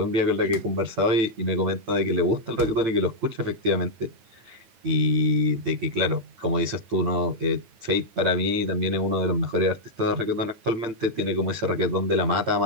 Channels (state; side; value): late; left; 8.9 ms